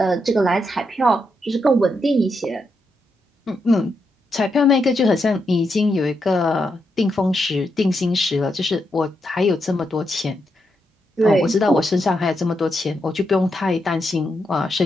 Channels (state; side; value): normal; both; correlation 0.82